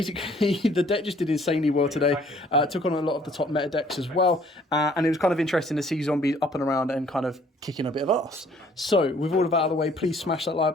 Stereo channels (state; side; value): normal; both; correlation 0.59